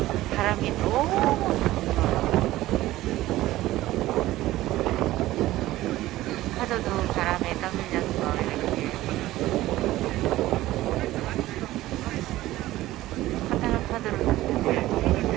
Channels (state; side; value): quieter; left; 16.2 dB